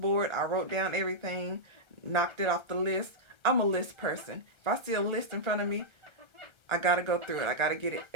I wrote down everything, knocked it off the list. I'm a list person. If I see a list in front of me, I gotta go through it. I gotta get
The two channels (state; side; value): late; left; 1.3 ms